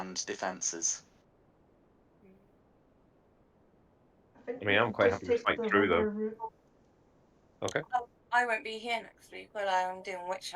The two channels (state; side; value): identical; both; correlation 1.00